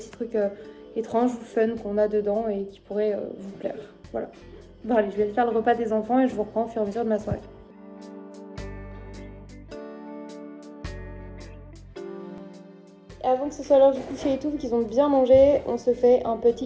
trucs étranges ou fun qu'on a dedans et qui pourraient vous plaire. Voilà. Bon allez, je vais aller faire le repas des enfants et je vous reprends au fur et à mesure de ma soirée. Avant que ce soit l'heure du coucher et tout, vu qu'ils ont bien mangé, on se fait un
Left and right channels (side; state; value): both; identical; correlation 1.00